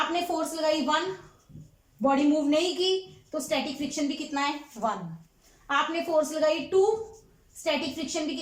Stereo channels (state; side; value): identical; both; correlation 1.00